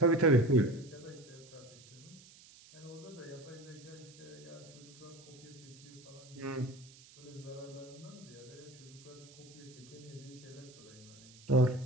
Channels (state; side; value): noise; right; hiss, 21 dB below the sound